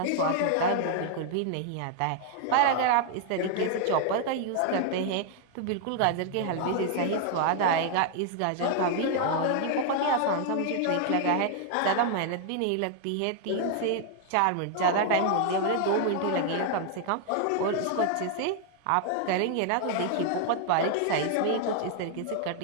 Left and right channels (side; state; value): both; different; correlation 0.00